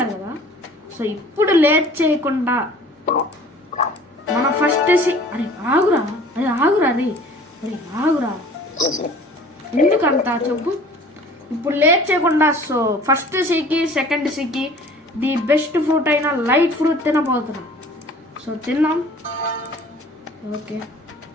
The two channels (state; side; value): normal; both; correlation 0.48